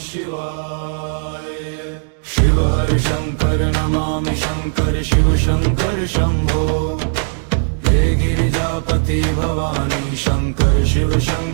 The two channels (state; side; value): silent; left; digital silence